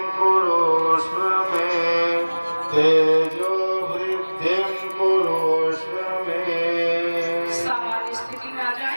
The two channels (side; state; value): both; inverted; correlation -1.00